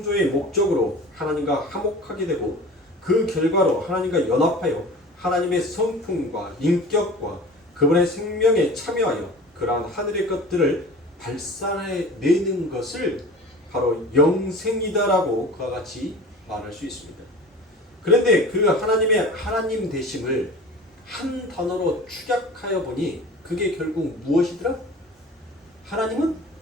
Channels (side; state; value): both; normal; correlation 0.39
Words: 목적으로 하나님과 화목하게 되고 그 결과로 하나님과 연합하여 하나님의 성품과 인격과 그분의 생명에 참여하여 그러한 하늘의 것들을 발산해내는 것을 바로 영생이다라고 그와 같이 말할 수 있습니다. 그런데 그 하나님의 하나님 되심을 한 단어로 축약하여 보니 그게 결국 무엇이더라? 하나님은